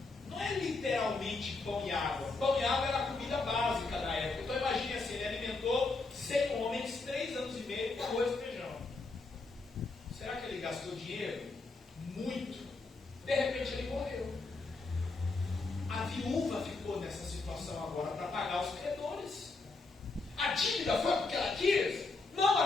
Não é literalmente pão e água. Pão e água era a comida básica da época. Então imagine assim, ele alimentou 100 homens 3 anos e meio com arroz e feijão. Será que ele gastou dinheiro? Muito. De repente ele morreu. A viúva ficou nessa situação agora para pagar os credores. A dívida foi porque ela quis? Não,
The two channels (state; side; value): quieter; right; 3.7 dB